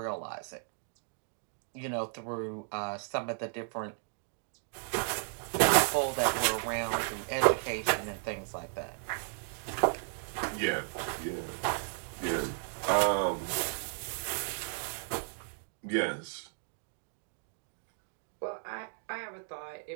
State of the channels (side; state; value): left; silent; 55 dB below the other